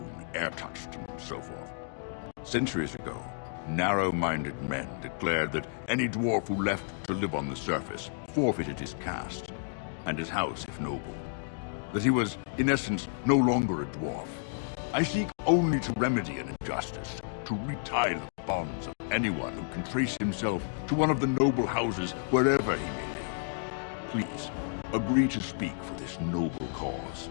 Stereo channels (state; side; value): silent; right; digital silence